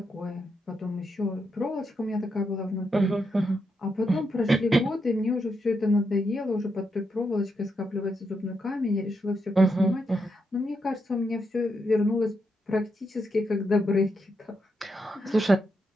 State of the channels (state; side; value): normal; both; correlation 0.82